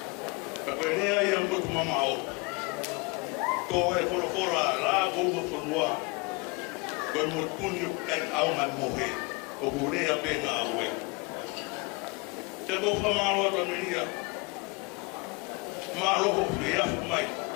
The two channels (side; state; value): right; quieter; 28.9 dB